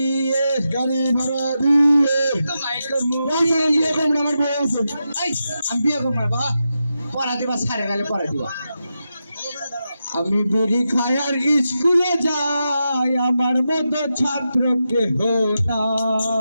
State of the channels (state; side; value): inverted; both; correlation -0.88